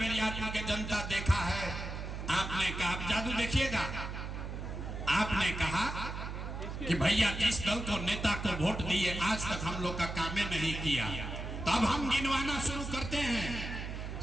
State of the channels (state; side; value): noise; right; hum, 6 dB below the sound